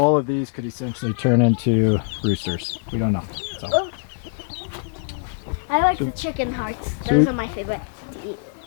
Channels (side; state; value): right; silent; 63 dB below the other